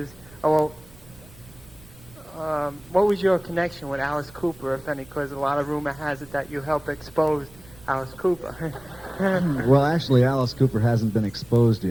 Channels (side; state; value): right; noise; rumble, 23 dB below the sound